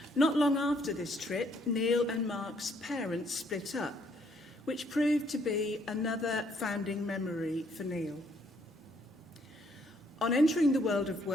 Not long after this trip, Neil and Mark's parents split up, which proved to be another founding memory for Neil. On entering the world of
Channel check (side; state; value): both; normal; correlation 0.68